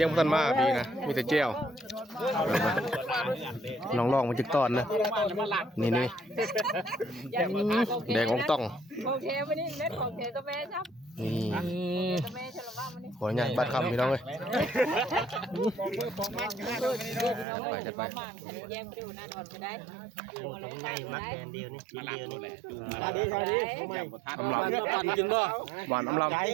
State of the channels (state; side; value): drops out; left; at 17.4 s